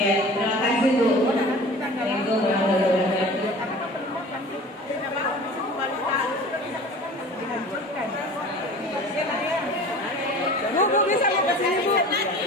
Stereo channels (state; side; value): normal; both; correlation 0.41